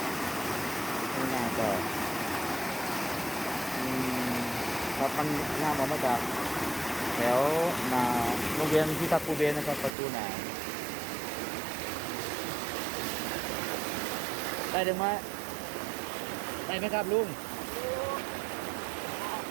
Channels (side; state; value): left; drops out; at 9.9 s